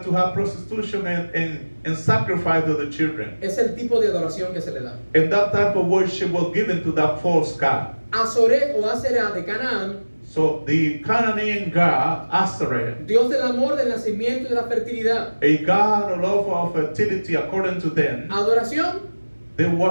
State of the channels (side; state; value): both; inverted; correlation -1.00